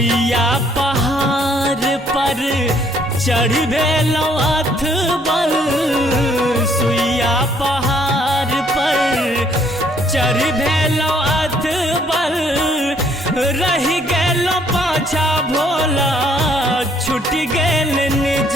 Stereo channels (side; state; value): both; normal; correlation 0.64